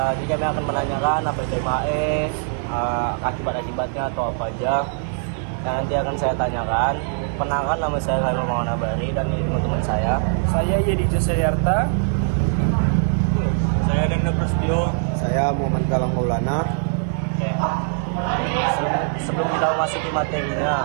Jadi kami akan menanyakan apa itu MHE, akibat-akibatnya atau apa aja. Nah, nanti akan saya tanyakan. Perkenalkan, nama saya Lalu Mawana Bari dan ini teman saya. Saya Yedi Jasayarta. Saya Denda Prasetyo. Saya Muhammad Galang Maulana. Sebelum kita masuk ke materinya,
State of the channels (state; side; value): silent; left; 62 dB below the other